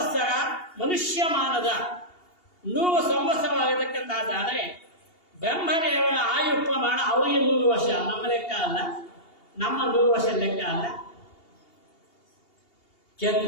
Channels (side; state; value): right; late; 2.8 ms